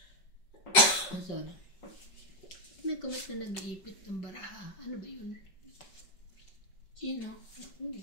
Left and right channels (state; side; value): late; right; 5.2 ms